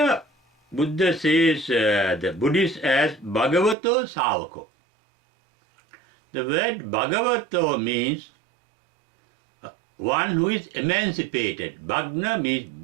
Buddha says the Buddhist as Bhagavato Savako. The word Bhagavato means one who is emancipated. Bhagna means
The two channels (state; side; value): drops out; left; at 3.8 s